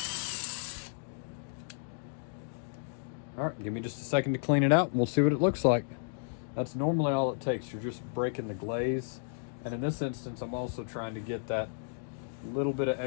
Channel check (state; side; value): silent; right; digital silence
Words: All right, give me just a second to clean it out and we'll see what it looks like. That's normally all it takes. You're just breaking the glaze. And in this instance, I'm also trying to get that little bit of